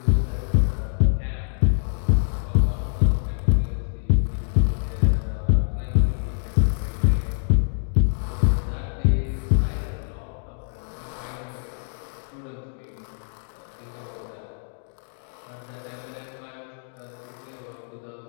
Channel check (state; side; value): silent; right; 62 dB below the other